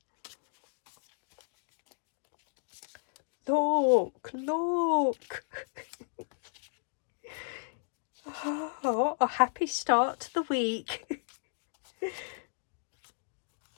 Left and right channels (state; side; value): silent; right; digital silence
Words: Look. Oh, a happy start to the week.